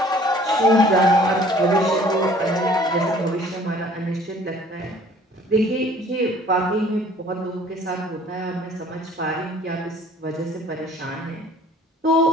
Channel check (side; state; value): both; normal; correlation 0.53